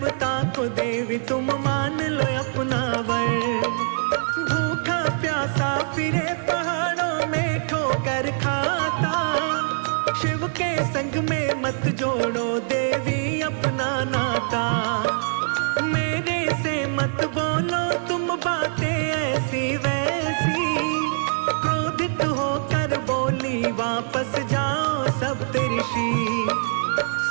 को देवी तुम मान लो अपना वर। भूखा प्यासा फिरे पहाड़ों में ठोकर खाता, शिव के संग में मत जोड़ो देवी अपना नाता। मेरे से मत बोलो तुम बातें ऐसी वैसी, क्रोधित होकर बोली वापस जाओ सप्तऋषि।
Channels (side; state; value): left; silent; digital silence